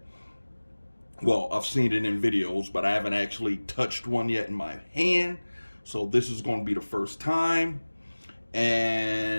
Well, I've seen it in videos, but I haven't actually touched one yet in my hand. So this is going to be the first time.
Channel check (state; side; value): inverted; both; correlation -1.00